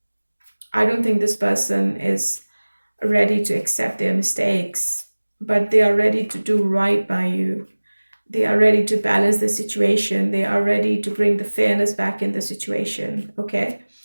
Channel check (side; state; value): both; inverted; correlation -1.00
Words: don't think this person is ready to accept their mistakes, but they are ready to do right by you. They are ready to balance the situation. They are ready to bring the fairness back in the situation, okay?